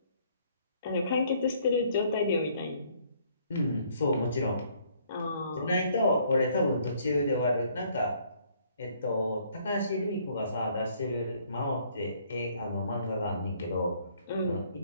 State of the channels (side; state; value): both; inverted; correlation -0.63